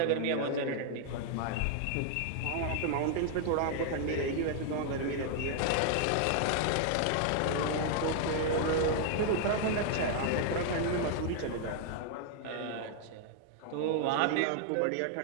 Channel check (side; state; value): both; different; correlation 0.00